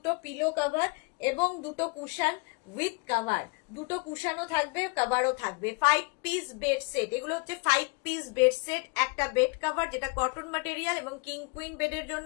পিলো কভার এবং দুটো কুশন উইথ কভার, দুটো কুশনও থাকবে, কভারও থাকবে। 5 পিস বেড সেট, এগুলো হচ্ছে 5 পিস বেড সেট। একটা বেড কভার যেটা কটন ম্যাটেরিয়াল এবং কিং কুইন বেডের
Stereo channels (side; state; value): right; quieter; 30.7 dB